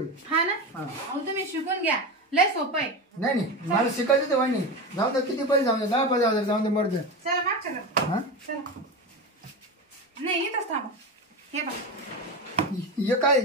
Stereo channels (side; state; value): both; normal; correlation 0.22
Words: हा ना अहो तुम्ही शिकून घ्या लय सोपं आहे. नाही मला शिकायचं तर वाणी जाऊ दे किती पैसे जाऊ दे 10,000 जाऊ दे मर्द. चला मागच्या घरात. हा चला नाही इथंच थांबा. हे बघा हे काय